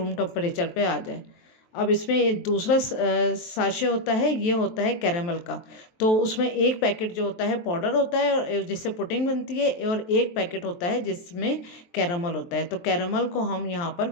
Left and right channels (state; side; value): late; right; 23 ms